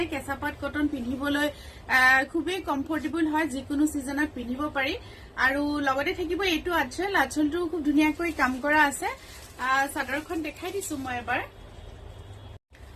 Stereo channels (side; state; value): both; identical; correlation 1.00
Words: কেঁচাপাত কটন পিন্ধিবলৈ খুবেই কমফৰ্টেবল হয় যিকোনো সিজনত পিন্ধিব পাৰি আৰু লগতে থাকিব এইটো আঁচলটো খুব ধুনীয়াকৈ কাম কৰা আছে চাদৰখন দেখাই দিছো মই এবাৰ